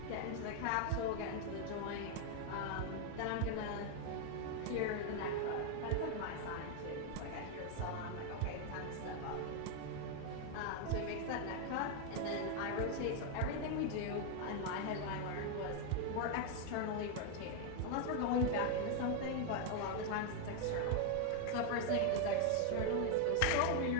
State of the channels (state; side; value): different; both; correlation 0.01